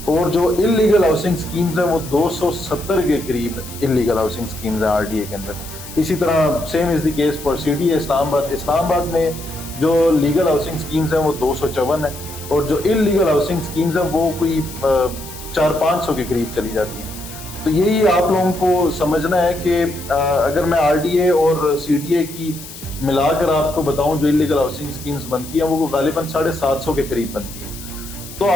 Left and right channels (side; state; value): left; noise; hiss, 14 dB below the sound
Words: اور جو انلیگل ہاؤسنگ سکیمز ہیں وہ 270 کے قریب انلیگل ہاؤسنگ سکیمز ہیں آر ڈی اے کے اندر۔ اسی طرح same as the case for C D A Islamabad میں جو لیگل ہاؤسنگ سکیمز ہیں وہ 254 ہیں، اور جو انلیگل ہاؤسنگ سکیمز ہیں وہ کوئی 400-500 کے قریب چلی جاتی ہیں۔ تو یہی آپ لوگوں کو سمجھنا ہے کہ اگر میں آر ڈی اے اور سی ڈی اے کی ملا کر آپ کو بتاؤں جو انلیگل ہاؤسنگ سکیمز بنتی ہیں وہ غالباً 750 کے قریب بنتی ہیں۔ تو